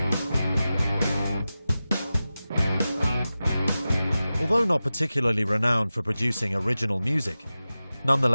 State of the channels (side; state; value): both; inverted; correlation -0.95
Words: Although not particularly renowned for producing original music,